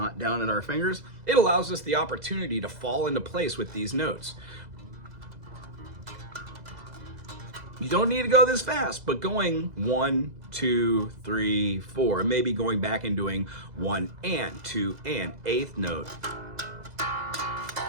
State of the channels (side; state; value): left; late; 2.0 ms